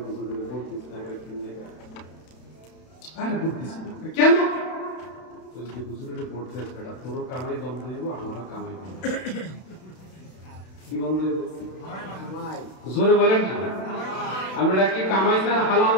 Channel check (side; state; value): right; late; 32 ms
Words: হুজুরের ভোট দিস না, আরে ভোট দিস না কেন? যদি হুজুরের ভোট দেয় বেটা তোরও কামাই বন্ধ হইব, আমারও কামাই বন্ধ। কি বন্ধ হইব? জোরে বলেন না। আমরা কি কামাই চান হালাল